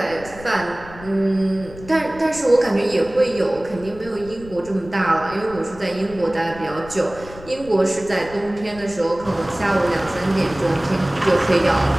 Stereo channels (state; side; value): noise; left; rumble, 17 dB below the sound